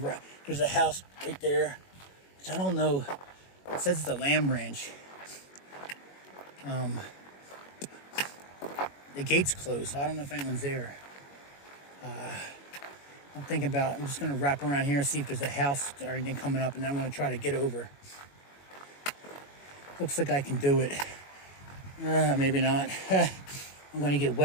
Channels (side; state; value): right; late; 21 ms